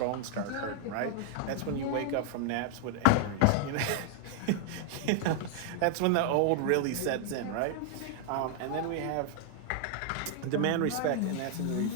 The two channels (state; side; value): different; both; correlation 0.00